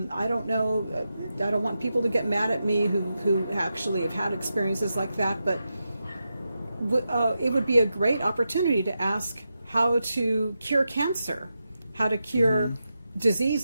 don't know. I don't want people to get mad at me who actually have had experiences like that, but it would be a great opportunity to ask how to cure cancer, how to cure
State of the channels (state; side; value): inverted; both; correlation -0.88